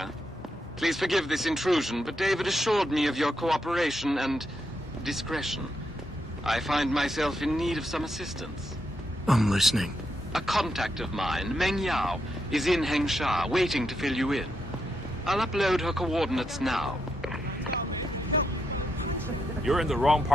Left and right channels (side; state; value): both; normal; correlation 0.82